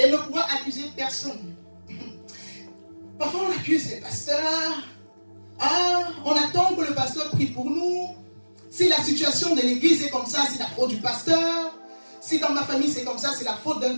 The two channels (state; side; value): inverted; both; correlation -1.00